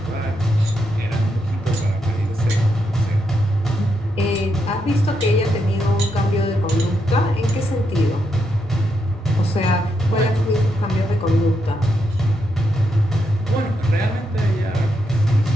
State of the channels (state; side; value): normal; both; correlation 0.81